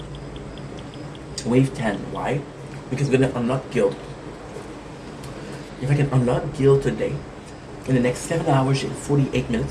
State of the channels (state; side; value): identical; both; correlation 1.00